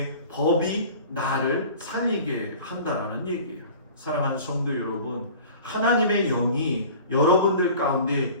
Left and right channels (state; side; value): inverted; both; correlation -0.43